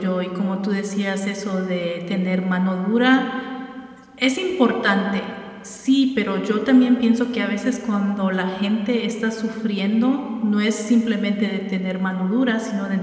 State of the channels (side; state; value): both; identical; correlation 1.00